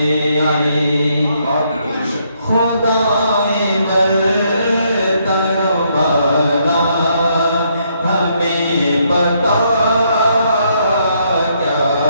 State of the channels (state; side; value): inverted; both; correlation -0.73